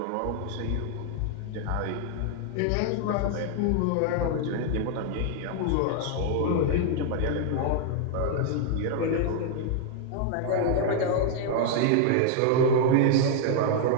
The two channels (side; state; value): both; different; correlation 0.00